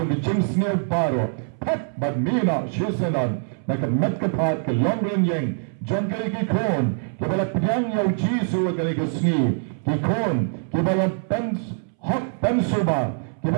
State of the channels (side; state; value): left; silent; 63 dB below the other